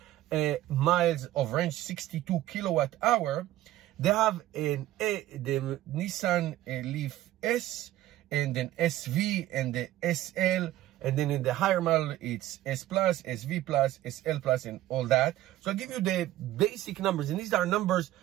miles of range, 62 kilowatt hour. They have the Nissan Leaf S, and then SV, and the SL. And then in the higher model, it's S Plus, SV Plus, SL Plus, and all that. So I'll give you the basic numbers. And these are numbers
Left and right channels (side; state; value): left; quieter; 14.6 dB